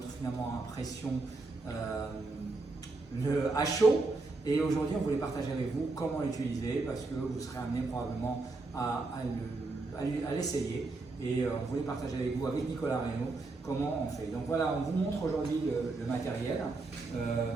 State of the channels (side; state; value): left; quieter; 3.5 dB